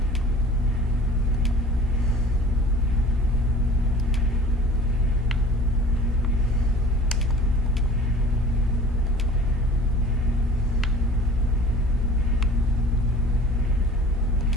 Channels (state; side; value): normal; both; correlation 0.44